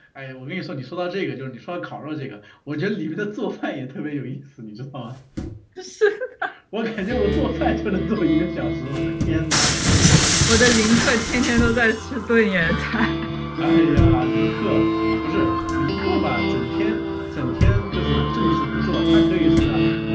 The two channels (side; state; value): both; identical; correlation 1.00